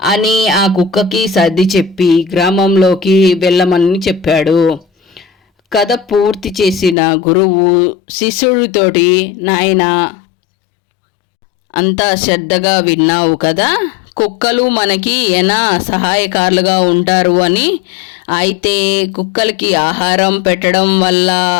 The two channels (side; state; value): right; drops out; at 7.0 s